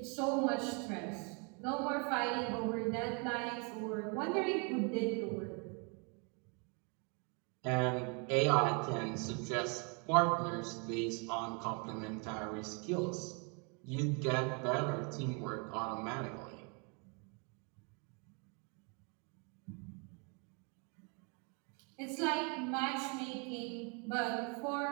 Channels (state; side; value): quieter; left; 34.8 dB